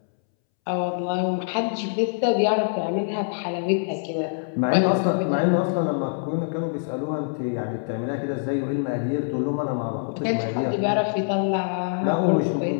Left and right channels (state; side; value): silent; right; 62 dB below the other